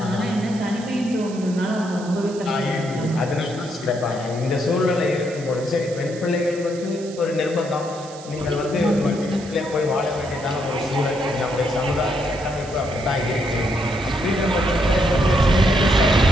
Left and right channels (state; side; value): noise; right; hiss, 18 dB below the sound